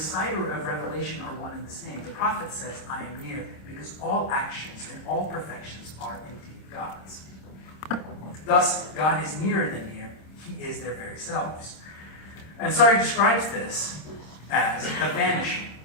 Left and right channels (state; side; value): late; right; 26 ms